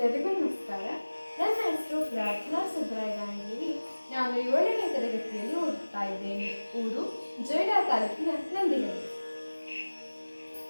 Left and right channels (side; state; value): both; inverted; correlation -1.00